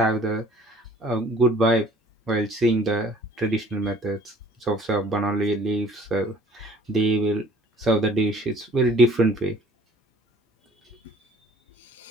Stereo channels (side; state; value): both; normal; correlation 0.54